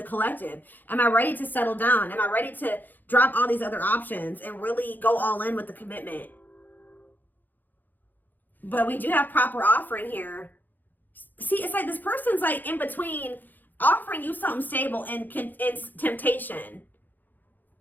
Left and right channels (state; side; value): late; right; 0.086 ms